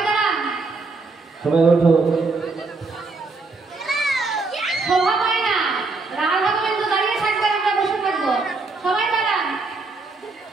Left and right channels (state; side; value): quieter; left; 3.8 dB